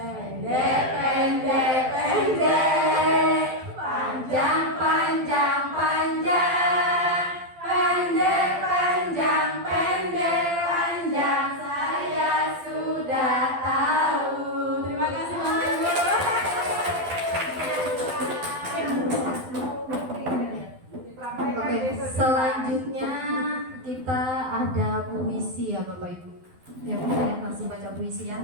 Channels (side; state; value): left; late; 12 ms